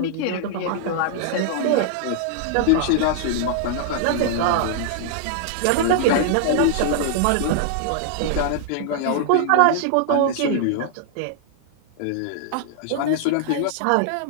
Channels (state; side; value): different; both; correlation -0.01